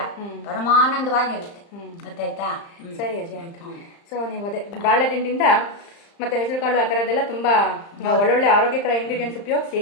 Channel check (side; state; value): right; late; 35 ms